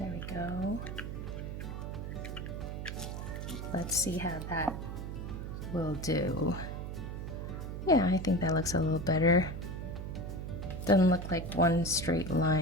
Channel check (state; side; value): noise; right; hum, 6 dB below the sound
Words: we go. Let's see how that will do. Yeah, I think that looks a little better. Doesn't look like one straight